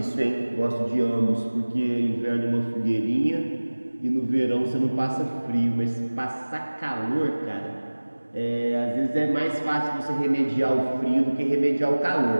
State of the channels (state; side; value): inverted; both; correlation -1.00